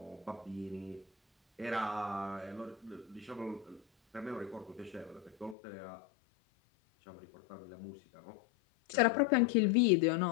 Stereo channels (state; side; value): drops out; right; at 5.6 s